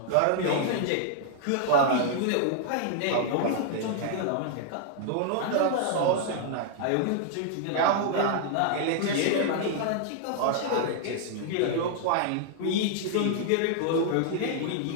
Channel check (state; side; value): different; both; correlation -0.01